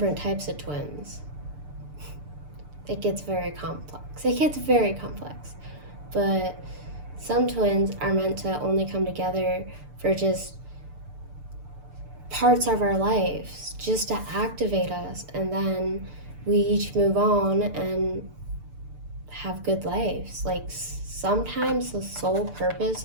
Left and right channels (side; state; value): left; late; 6.8 ms